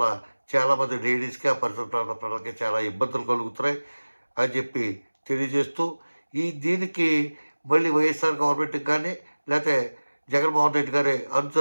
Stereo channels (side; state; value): both; inverted; correlation -1.00